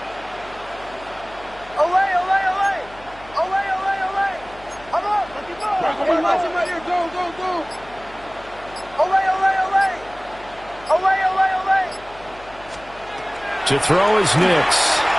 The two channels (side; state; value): left; noise; hum, 22 dB below the sound